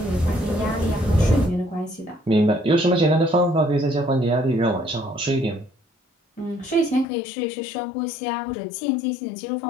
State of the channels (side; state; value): right; drops out; at 7.1 s